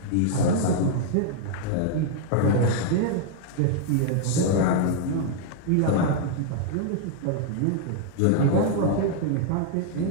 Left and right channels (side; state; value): both; different; correlation -0.01